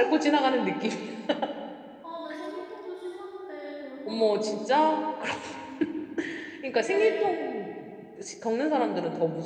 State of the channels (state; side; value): identical; both; correlation 1.00